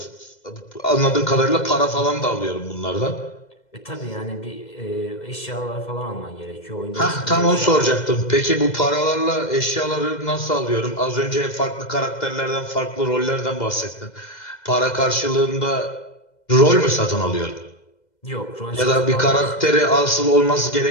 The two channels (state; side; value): late; right; 2.0 ms